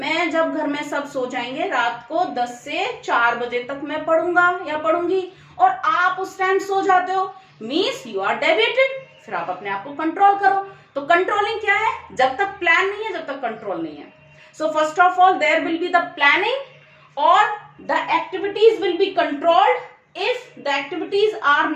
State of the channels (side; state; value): both; identical; correlation 1.00